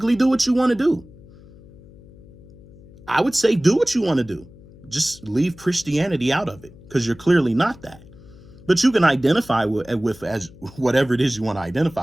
do what you want to do. I would say do what you want to do. Just leave Christianity out of it, because you're clearly not that. But you can identify with as whatever it is you want to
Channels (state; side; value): noise; left; hum, 22 dB below the sound